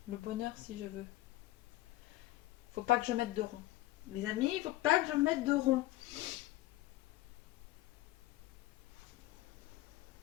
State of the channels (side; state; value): right; quieter; 17.1 dB